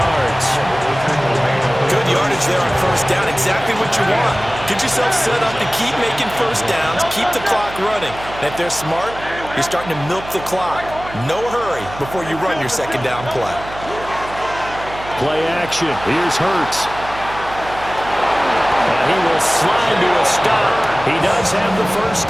Good yardage there on 1st down. Exactly what you want. Get yourself set up to keep making 1st downs, keep the clock running. And if they're smart, you're starting to milk the clock. No hurry before you run your second down play. Play action. Here's Hurts. And he will slide to a stop. He does have the 1st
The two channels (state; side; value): noise; right; hum, 14 dB below the sound